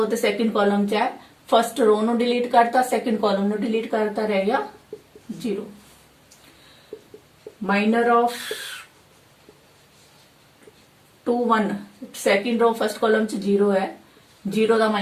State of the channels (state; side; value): identical; both; correlation 1.00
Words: ਤੇ ਸੈਕਿੰਡ ਕਾਲਮ ਚ ਹੈ, ਫਸਟ ਰੋ ਨੂੰ ਡਿਲੀਟ ਕਰਤਾ, ਸੈਕਿੰਡ ਕਾਲਮ ਨੂੰ ਡਿਲੀਟ ਕਰਤਾ, ਰਹਿ ਗਿਆ 0। ਮਾਈਨਰ ਆਫ 2 1, ਸੈਕਿੰਡ ਰੋ ਫਸਟ ਕਾਲਮ ਚ 0 ਹੈ, 0 ਦਾ